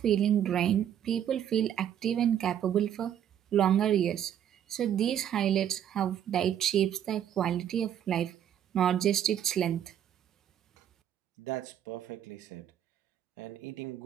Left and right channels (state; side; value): quieter; left; 10.0 dB